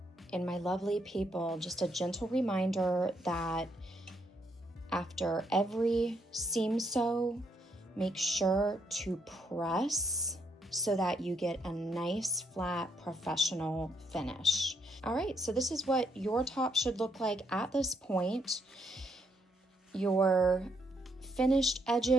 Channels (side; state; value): both; normal; correlation 0.74